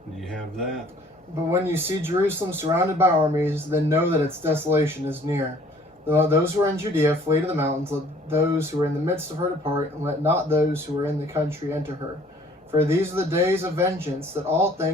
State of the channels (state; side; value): normal; both; correlation 0.56